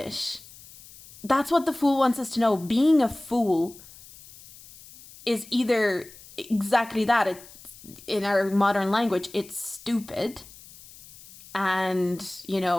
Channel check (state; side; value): noise; left; hiss, 20 dB below the sound